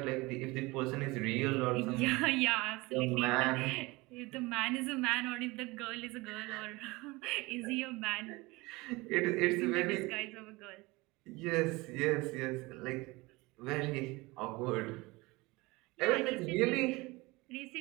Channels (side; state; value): left; quieter; 22.8 dB